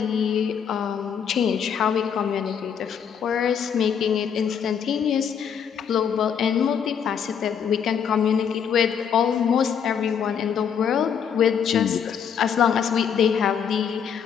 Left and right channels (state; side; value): quieter; right; 7.7 dB